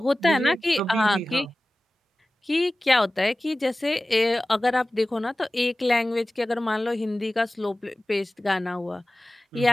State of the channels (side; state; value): both; normal; correlation 0.97